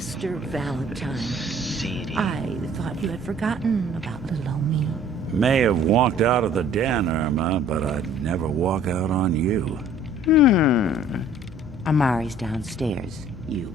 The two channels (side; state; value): both; normal; correlation 0.53